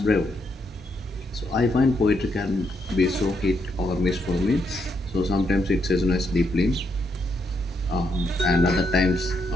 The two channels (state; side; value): normal; both; correlation 0.78